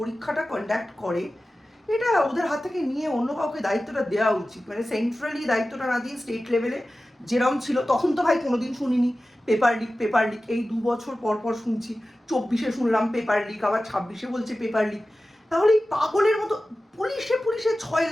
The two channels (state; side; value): normal; both; correlation 0.95